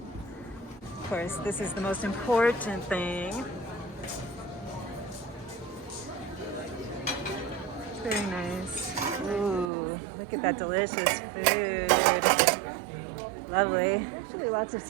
Of course, this is the most important thing. Very nice. Ooh, look at that delicious food. Lovely. Actually, lots of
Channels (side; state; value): left; drops out; at 9.7 s